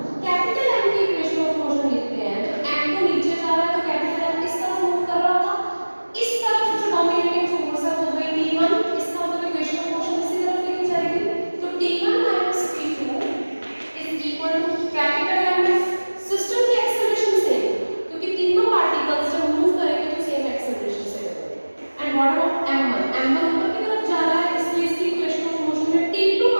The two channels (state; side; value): inverted; both; correlation -1.00